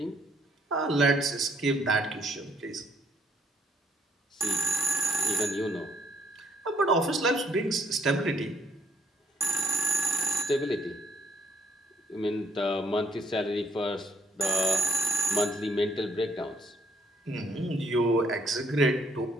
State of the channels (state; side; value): normal; both; correlation 0.67